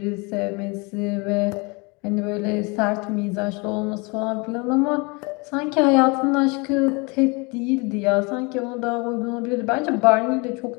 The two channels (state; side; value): quieter; right; 29.1 dB